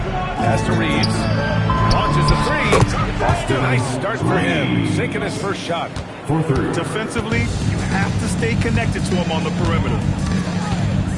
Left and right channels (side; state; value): both; identical; correlation 1.00